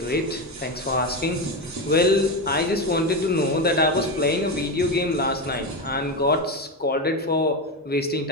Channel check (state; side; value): normal; both; correlation 0.15